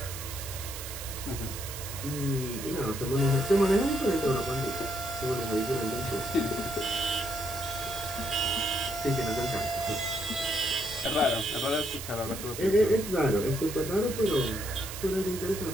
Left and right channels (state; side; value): noise; right; hiss, 9 dB below the sound